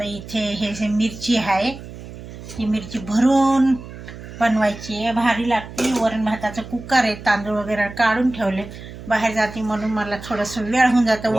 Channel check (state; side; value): noise; right; hum, 13 dB below the sound